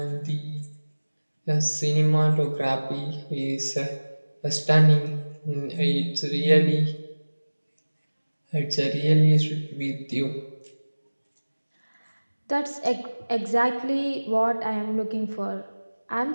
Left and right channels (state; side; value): inverted; both; correlation -1.00